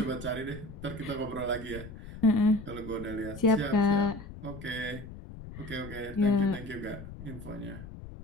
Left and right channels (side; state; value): left; noise; rumble, 13 dB below the sound